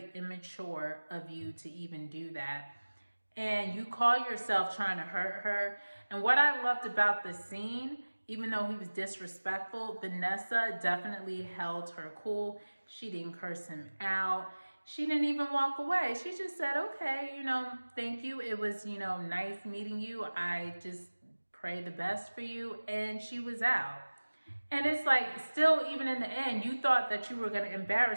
immature of you to even do that. And you call yourself trying to hurt her. And what I loved about the scene, even though he was disrespectful, Vanessa definitely held her cool. She didn't curse him out. She didn't even walk away. She just said, okay, you know, thank you. It was, you know, nice meeting you. I just pray the best for you. And she was out. And it's like, still, even in the end, you thought that you were going to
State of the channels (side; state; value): both; inverted; correlation -1.00